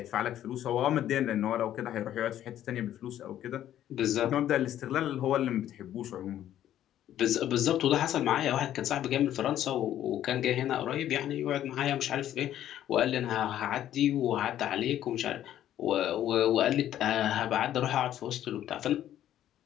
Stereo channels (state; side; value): quieter; right; 11.7 dB